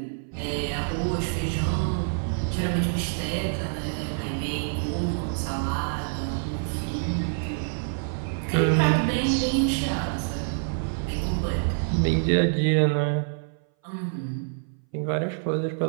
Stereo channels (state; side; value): silent; left; 59 dB below the other